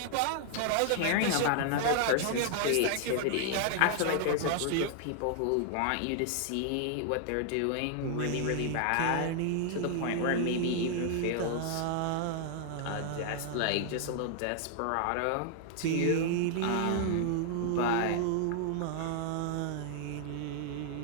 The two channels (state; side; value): different; both; correlation 0.00